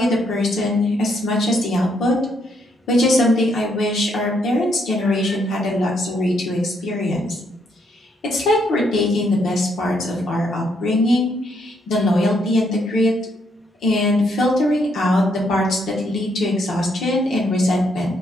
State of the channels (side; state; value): both; normal; correlation 0.74